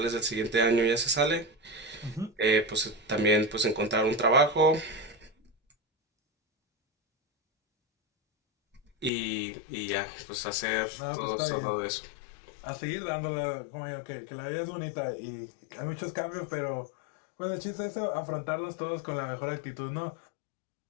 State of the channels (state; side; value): drops out; right; at 9.1 s